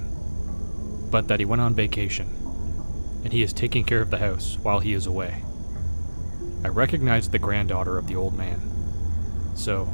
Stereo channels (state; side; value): inverted; both; correlation -1.00